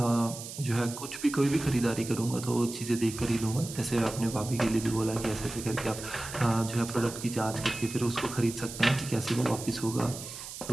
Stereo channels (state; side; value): noise; right; hiss, 11 dB below the sound